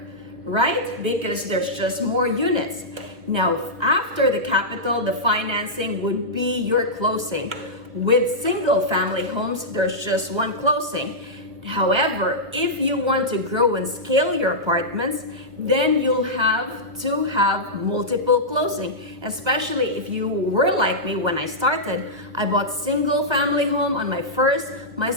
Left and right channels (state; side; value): late; left; 1.5 ms